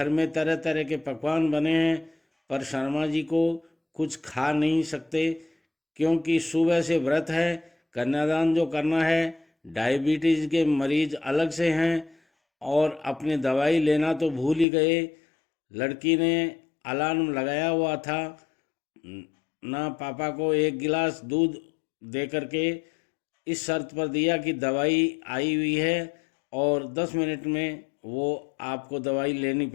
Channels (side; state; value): right; drops out; at 14.7 s